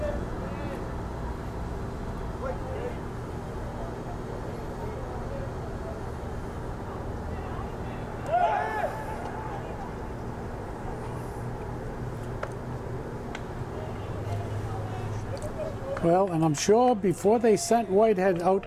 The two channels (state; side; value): identical; both; correlation 1.00